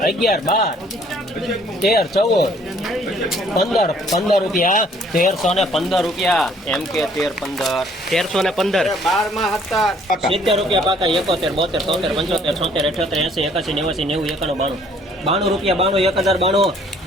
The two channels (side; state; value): both; normal; correlation 0.60